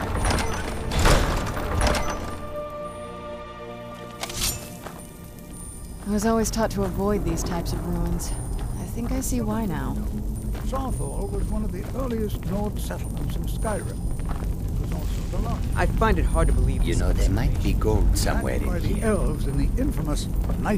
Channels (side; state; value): both; identical; correlation 1.00